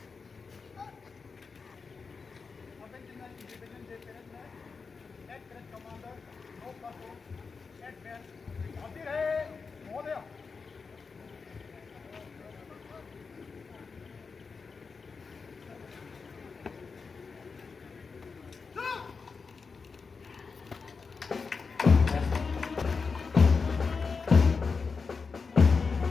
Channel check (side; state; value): right; quieter; 4.9 dB